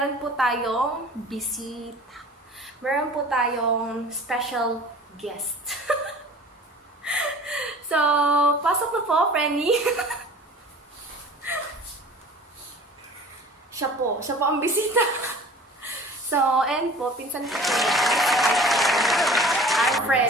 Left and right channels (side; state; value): both; normal; correlation 0.44